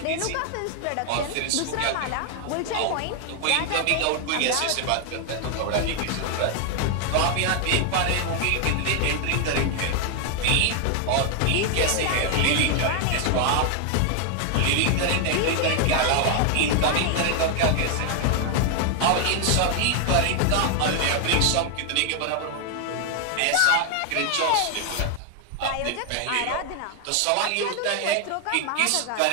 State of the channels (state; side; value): different; both; correlation 0.00